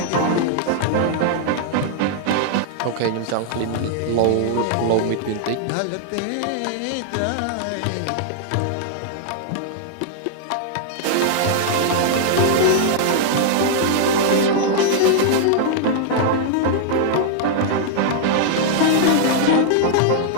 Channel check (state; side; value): different; both; correlation -0.01